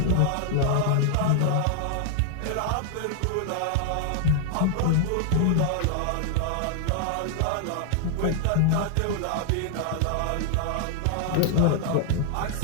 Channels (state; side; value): different; both; correlation 0.00